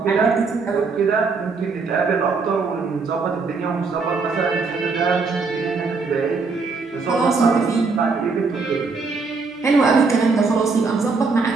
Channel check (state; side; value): quieter; left; 4.4 dB